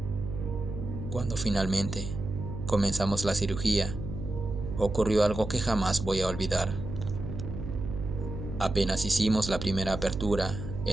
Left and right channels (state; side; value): noise; right; hum, 7 dB below the sound